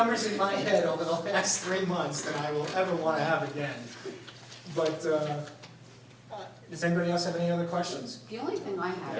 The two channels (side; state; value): both; identical; correlation 1.00